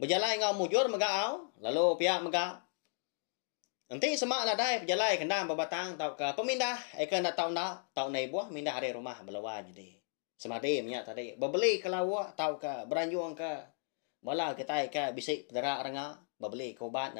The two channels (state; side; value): silent; right; digital silence